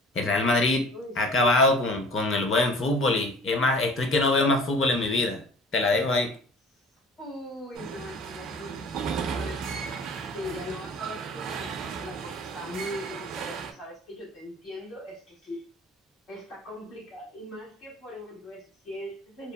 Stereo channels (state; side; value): normal; both; correlation 0.46